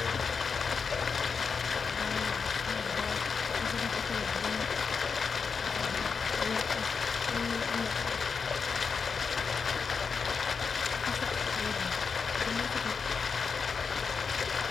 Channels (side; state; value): right; quieter; 5.5 dB